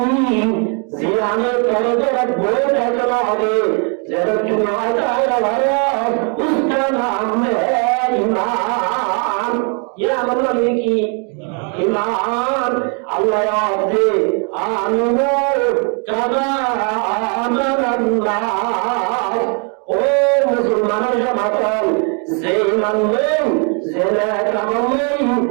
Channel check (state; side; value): quieter; left; 38.4 dB